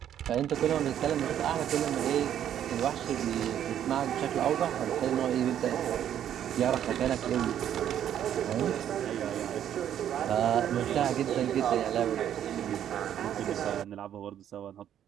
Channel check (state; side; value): quieter; left; 10.3 dB